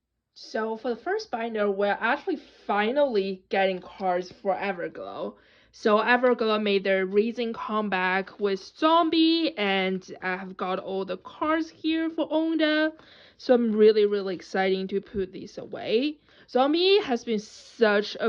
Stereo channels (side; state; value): both; identical; correlation 1.00